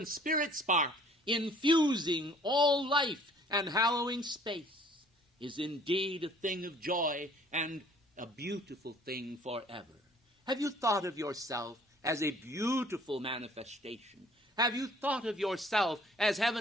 spirit spark, infusing all life and hallowing space, is indeed a thing of joy and a beautiful thing forever. Have you thought of yourself as a beautiful manifestation? Have you thought of yourself as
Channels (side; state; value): both; normal; correlation 0.56